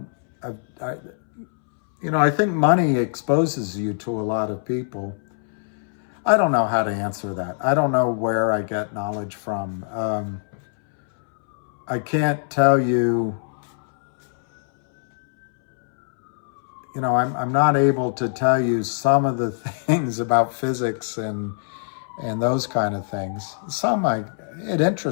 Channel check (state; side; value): silent; right; 64 dB below the other